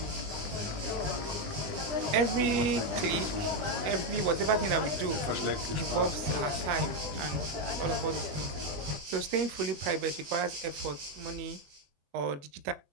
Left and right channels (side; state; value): left; late; 21 ms